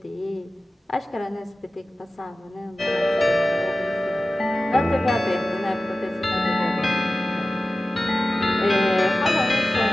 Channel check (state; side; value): normal; both; correlation 0.95